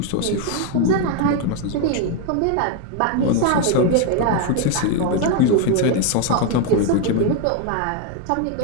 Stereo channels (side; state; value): both; different; correlation 0.01